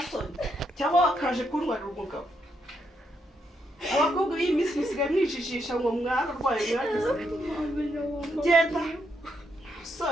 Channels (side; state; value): both; normal; correlation 0.78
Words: Cyangwa wakaje kuntwarira umugabo? Abakobwa b'iyi minsi musigaye mwijijisha ngo mwararwaye mwagize. Genda.